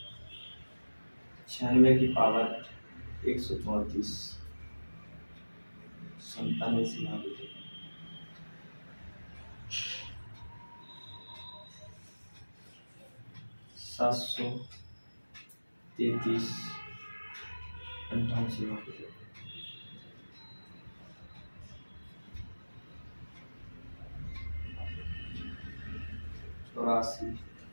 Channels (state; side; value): inverted; both; correlation -1.00